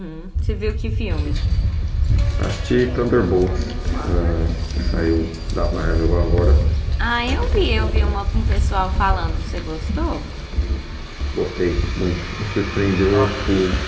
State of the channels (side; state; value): both; identical; correlation 1.00